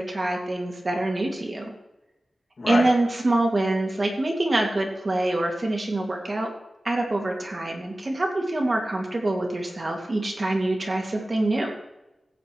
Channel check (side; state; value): both; normal; correlation 0.96